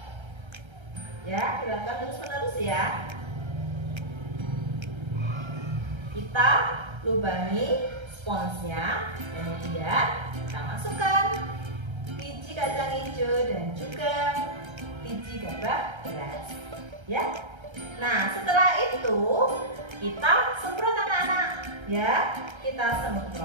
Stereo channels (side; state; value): left; late; 1.3 ms